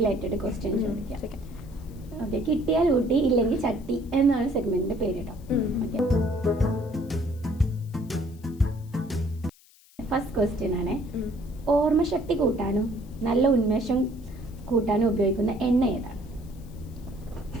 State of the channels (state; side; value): noise; left; hiss, 27 dB below the sound